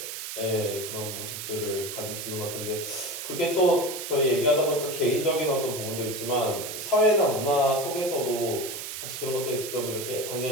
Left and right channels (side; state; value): right; noise; hiss, 7 dB below the sound